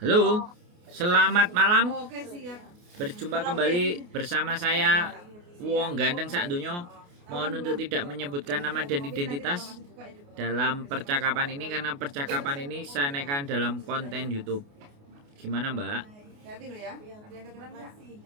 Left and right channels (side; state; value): left; late; 28 ms